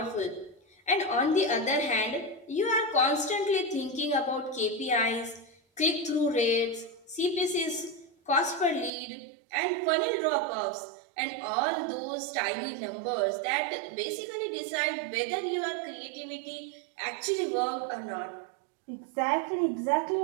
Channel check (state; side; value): drops out; left; at 8.9 s